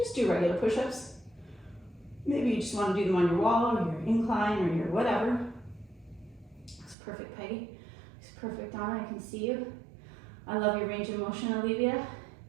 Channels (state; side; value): drops out; left; at 7.0 s